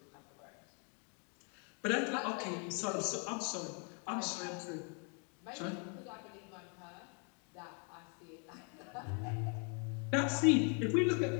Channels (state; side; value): quieter; right; 38.3 dB